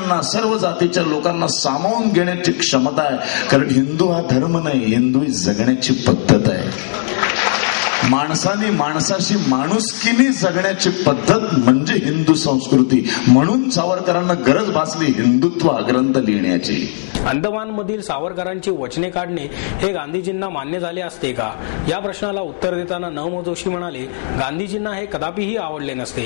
सर्व जातीच्या लोकांना सामावून घेण्याची क्षमता आहे. कारण हिंदू हा धर्म नाही, हिंदू ही जगण्याची पद्धत आहे. माणसाने माणसाशी माणुसकीने जगण्याची पद्धत म्हणजे हिंदू संस्कृती. म्हणून सावरकरांना गरज भासली हिंदुत्व ग्रंथ लिहिण्याची. अंदमानमधील सावरकरांची वचने काढणे हे गांधीजींना मान्य झाले असते का, या प्रश्नाला उत्तर देताना न. मो. जोशी म्हणाले, गांधीजींना हे कदापिही आवडले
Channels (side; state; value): right; silent; digital silence